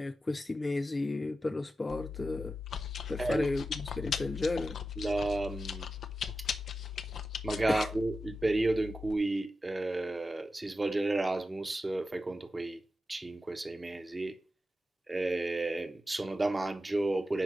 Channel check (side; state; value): both; normal; correlation 0.91